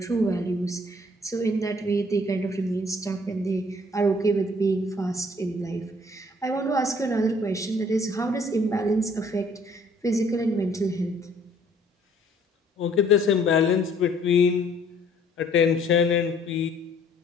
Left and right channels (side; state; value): both; normal; correlation 0.59